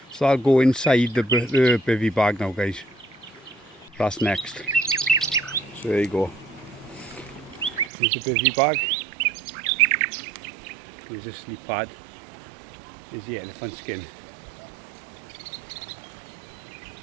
So I'll go inside the bivvy bag now, guys. That's next. So there you go. Here's the bivvy bag. Here's the sleep pad. Here's the elephant skin.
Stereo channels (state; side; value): drops out; left; at 7.9 s